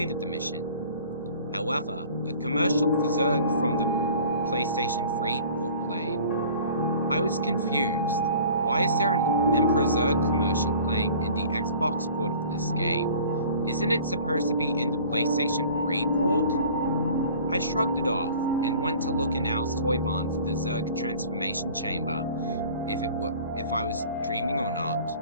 the mission. However, a commercial for Zurg from the PlayStation 3 port played. I was confused. Why is there an Emperor Zurg commercial playing in the Xbox port of this game? Isn't it supposed to be in the PlayStation 3 port? I shrugged it off and went to look in Al's toy barn for the Zurg transformation chamber, if I was dreaming or not,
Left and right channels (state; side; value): inverted; both; correlation -0.47